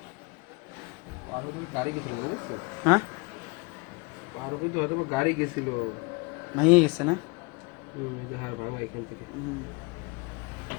আরো তো গাড়ি গেছিল, বুঝছো? হ্যাঁ, আরো কিন্তু হয়তো গাড়ি গেছিল। ভেঙে গেছে না? এই যে হাড় ভাঙা এখান থেকে। হুম।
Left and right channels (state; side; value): quieter; right; 29.0 dB